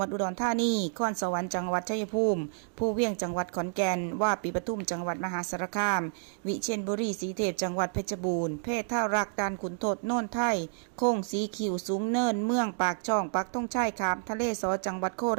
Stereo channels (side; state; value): left; silent; digital silence